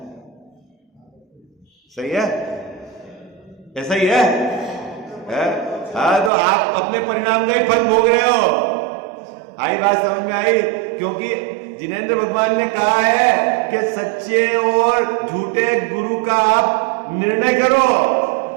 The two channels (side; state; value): left; drops out; at 6.3 s